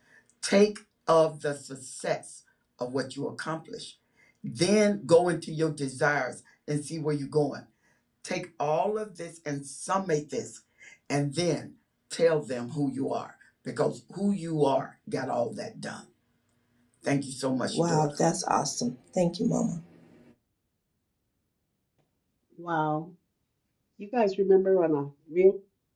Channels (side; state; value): both; identical; correlation 1.00